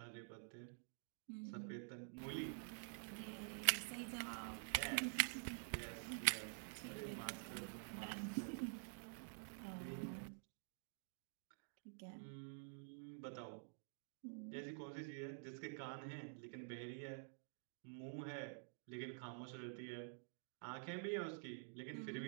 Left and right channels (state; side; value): silent; left; digital silence